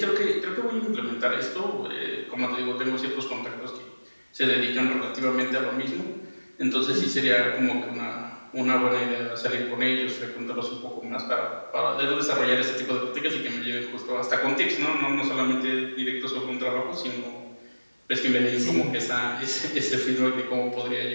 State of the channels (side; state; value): both; inverted; correlation -1.00